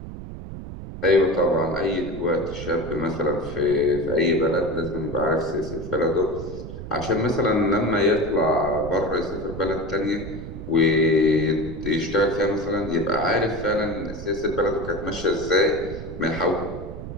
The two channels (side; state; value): right; noise; rumble, 10 dB below the sound